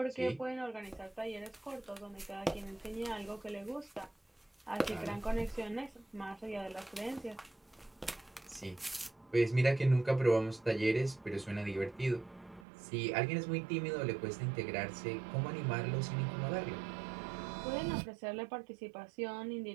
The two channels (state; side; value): drops out; left; at 12.7 s